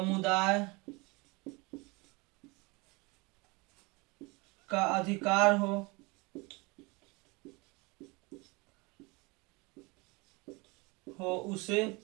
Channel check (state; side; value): quieter; left; 26.5 dB